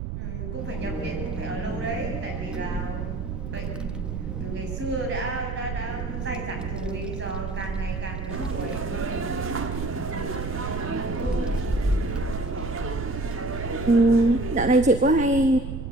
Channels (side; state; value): right; noise; rumble, 5 dB below the sound